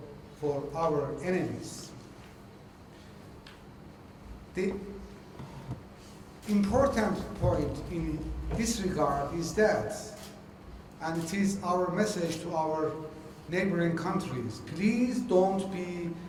our enemies. The important point in this regard is that, and it is our message to our neighboring countries, please don't be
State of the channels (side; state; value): both; identical; correlation 1.00